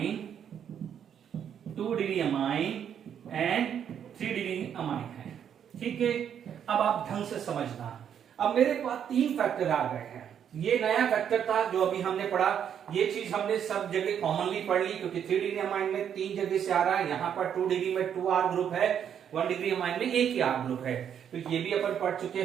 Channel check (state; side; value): quieter; left; 8.7 dB